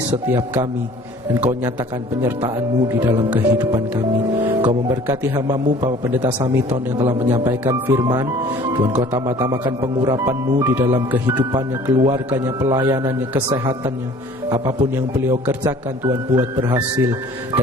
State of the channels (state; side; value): normal; both; correlation 0.50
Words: setiap kami, dan Kau nyatakan penyertaan-Mu di dalam kehidupan kami. Kau memberkati hamba-Mu Bapak Pendeta Samiton yang telah menyampaikan firman. Tuhan Kau tambah-tambahkan pengurapan-Mu di dalam kehidupannya, keluarganya, pelayanannya, kesehatannya. Apapun yang beliau kerjakan Tuhan buat berhasil,